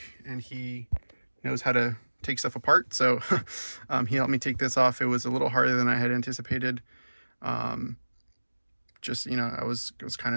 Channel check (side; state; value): both; inverted; correlation -1.00